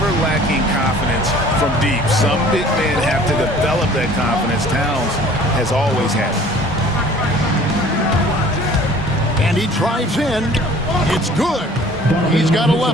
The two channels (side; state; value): both; normal; correlation 0.50